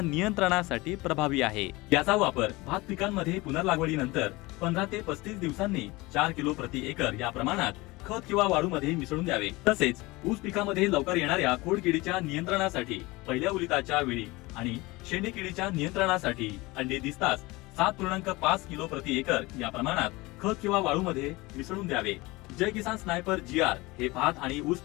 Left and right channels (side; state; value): right; quieter; 22.2 dB